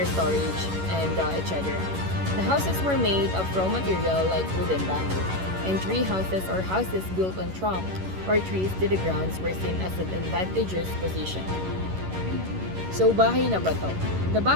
storage, and etc. The houses were made of raw material like wood and bamboo, and tree houses or houses built on trunk or trees to the grounds were seen as an advantageous position. So, Bahay na Bato. The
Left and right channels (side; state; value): left; late; 11 ms